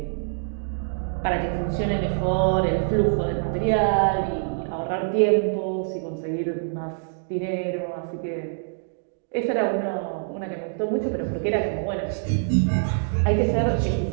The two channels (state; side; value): silent; left; digital silence